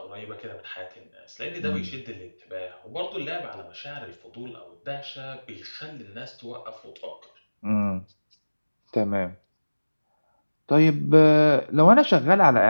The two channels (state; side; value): inverted; both; correlation -1.00